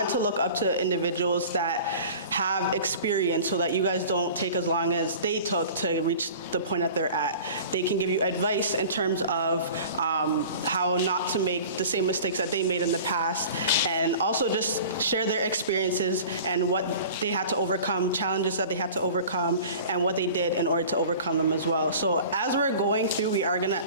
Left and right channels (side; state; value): both; inverted; correlation -0.41